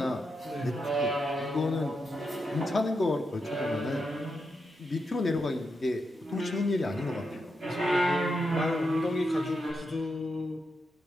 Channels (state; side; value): normal; both; correlation 0.85